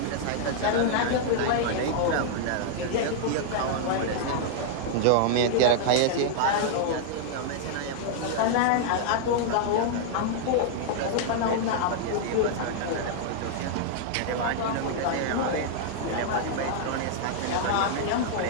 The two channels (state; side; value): different; both; correlation -0.01